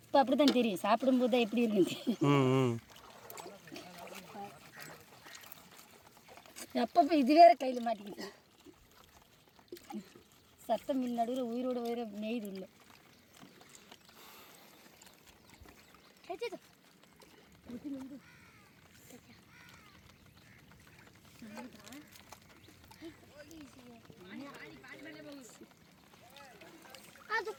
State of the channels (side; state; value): both; identical; correlation 1.00